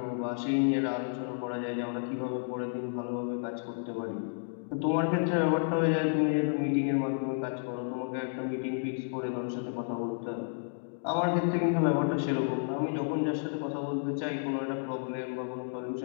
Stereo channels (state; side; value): silent; right; digital silence